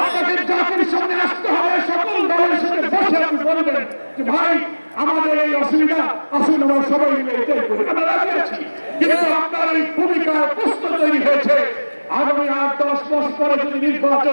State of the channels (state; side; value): inverted; both; correlation -1.00